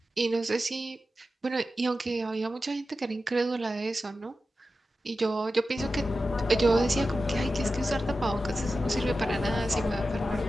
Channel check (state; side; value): normal; both; correlation 0.93